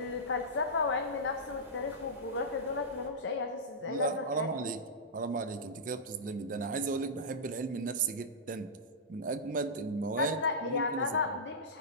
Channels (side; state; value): both; normal; correlation -0.12